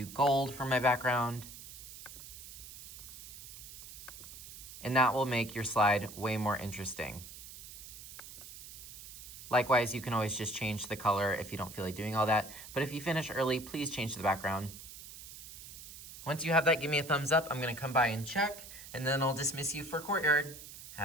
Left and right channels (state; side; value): noise; right; hiss, 14 dB below the sound